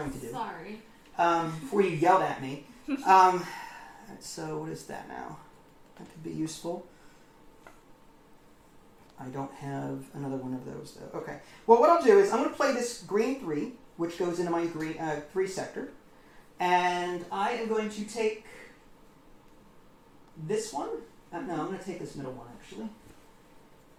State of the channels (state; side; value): identical; both; correlation 1.00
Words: to do. Sorry. Before you yelled at me. So what is that now? That could be useful. I don't have another one of those though. Okay. Well, what I'll do is I'm going to play this green 3, which goes into my green 3 sector. And I am going to take this one. No, I'm going to take this middle one actually.